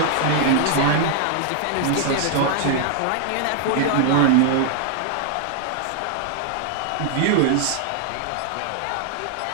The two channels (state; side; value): different; both; correlation 0.00